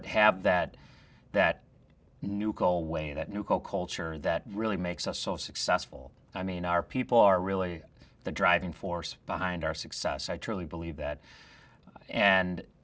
have that Neuco way, that Neuco culture that really makes us so successful. I mean, our people are really the driving force behind our success. I truly believe that. And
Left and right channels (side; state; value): both; identical; correlation 1.00